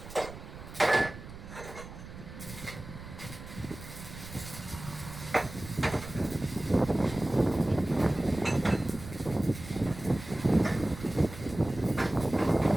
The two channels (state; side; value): noise; right; rumble, 13 dB below the sound